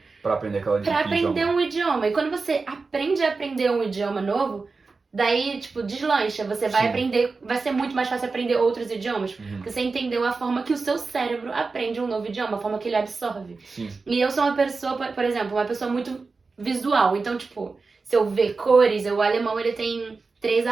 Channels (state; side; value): quieter; left; 4.2 dB